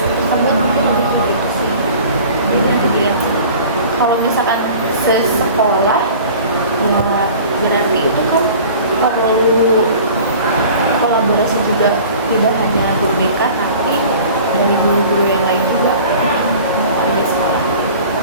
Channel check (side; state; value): both; inverted; correlation -0.44